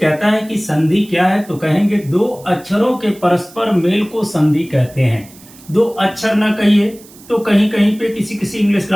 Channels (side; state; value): right; noise; hiss, 23 dB below the sound